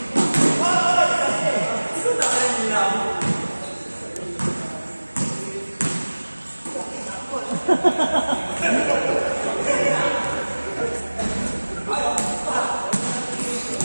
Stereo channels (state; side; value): inverted; both; correlation -1.00